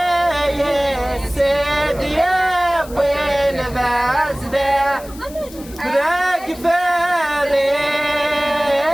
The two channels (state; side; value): noise; left; hiss, 19 dB below the sound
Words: السيد يا بن بازده ذاك